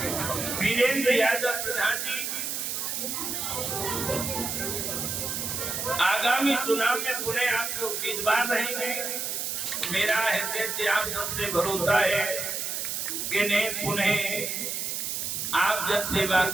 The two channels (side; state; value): right; noise; hiss, 2 dB below the sound